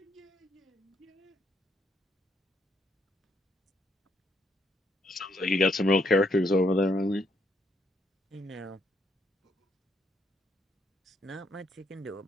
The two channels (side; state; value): both; normal; correlation 0.73